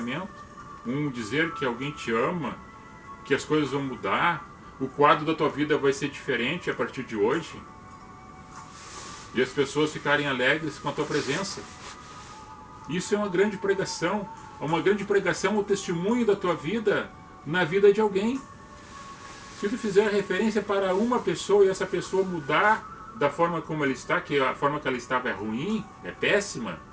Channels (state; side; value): identical; both; correlation 1.00